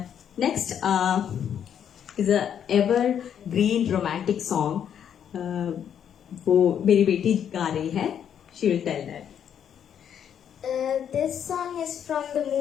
Next is a ever green romantic song. वो मेरी बेटी गा रही है. She will tell that. This song is from the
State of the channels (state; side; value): quieter; right; 8.8 dB